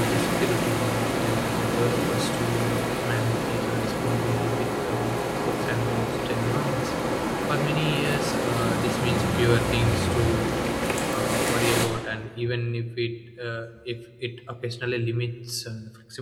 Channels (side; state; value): both; identical; correlation 1.00